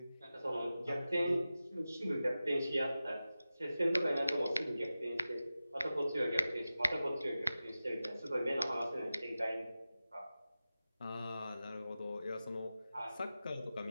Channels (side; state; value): both; inverted; correlation -0.94